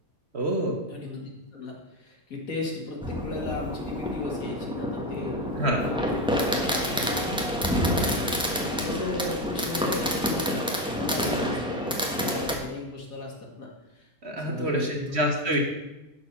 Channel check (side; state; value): both; normal; correlation 0.12